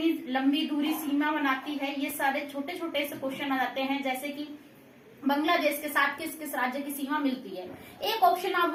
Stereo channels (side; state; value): both; identical; correlation 1.00